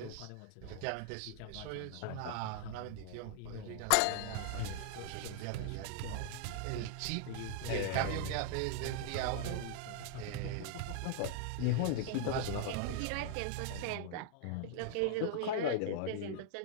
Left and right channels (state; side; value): different; both; correlation -0.01